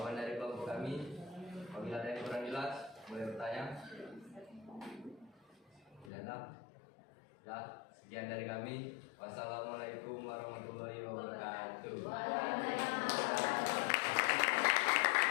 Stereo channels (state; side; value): drops out; right; at 6.1 s